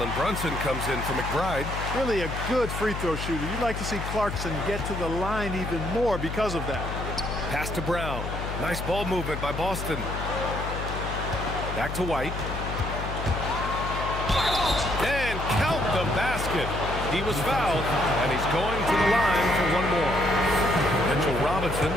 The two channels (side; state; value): left; noise; hum, 5 dB below the sound